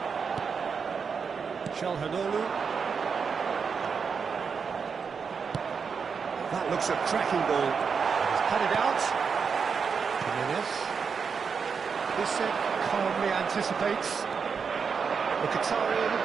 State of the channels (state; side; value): quieter; left; 5.9 dB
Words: Çalhanoğlu. That looks a cracking ball. Cut it out. Jimenez. Bissek calmly anticipates. Mkhitaryan